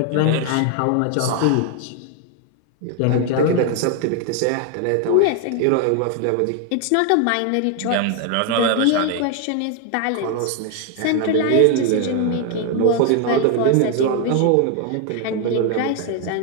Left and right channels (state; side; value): different; both; correlation 0.01